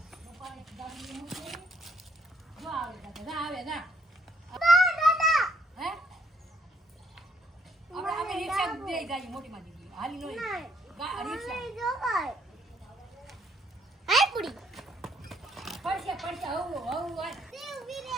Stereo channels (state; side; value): normal; both; correlation 0.69